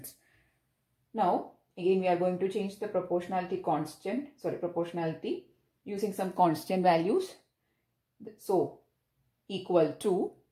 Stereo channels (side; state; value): both; identical; correlation 1.00